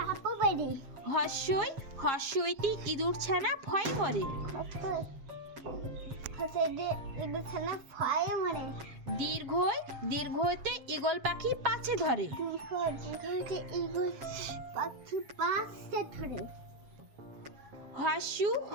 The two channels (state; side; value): late; left; 7.4 ms